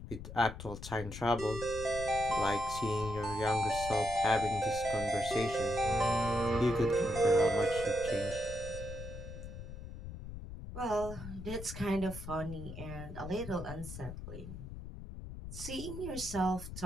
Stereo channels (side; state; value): left; noise; rumble, 10 dB below the sound